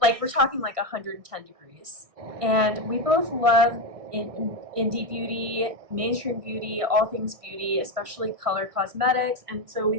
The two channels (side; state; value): left; late; 1.5 ms